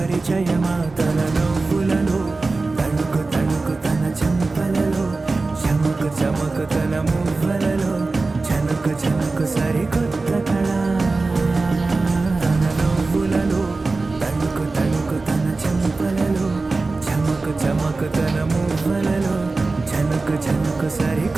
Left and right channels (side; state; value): left; quieter; 3.6 dB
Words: పరిచయమా తన నవ్వులలో, తణుకు తణుకు తన చెంపలలో, చమకు చమకు తన మువ్వలలో, చనుకు చనుకు సరికొత్త కళ. తన నవ్వులలో, తణుకు తణుకు తన చెంపలలో, చమకు చమకు తన మువ్వలలో, చనుకు చనుకు